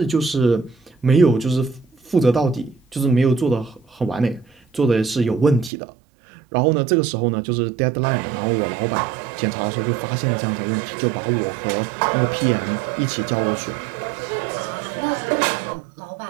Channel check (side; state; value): left; drops out; at 5.7 s